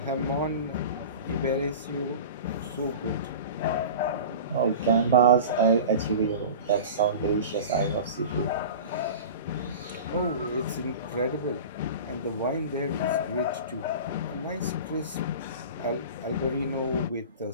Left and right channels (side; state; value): both; inverted; correlation -0.34